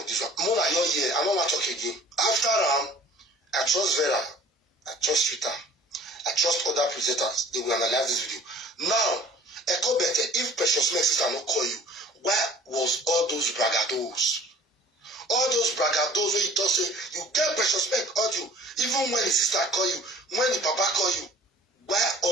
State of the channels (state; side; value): normal; both; correlation 0.49